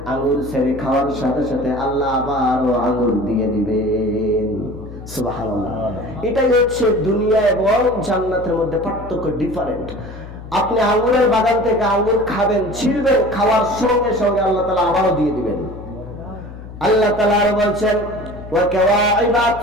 আঙ্গুর ছেড়ে খাওয়ার সাথে সাথে আল্লাহ আবারও আঙ্গুর দিয়ে দিবেন। সুবহানাল্লাহ। এটাই হচ্ছে দুনিয়া এবং জান্নাতের মধ্যে পার্থক্য, ডিফারেন্ট। আপনি আঙ্গুরের বাগান থেকে আঙ্গুর খাবেন, ছিঁড়বেন, খাওয়ার সঙ্গে সঙ্গে আল্লাহ তাআলা আবারও দিয়ে দিবেন। আল্লাহ তাআলা আরো বলছেন, ওয়া কাওয়াইবা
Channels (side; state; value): left; noise; hum, 14 dB below the sound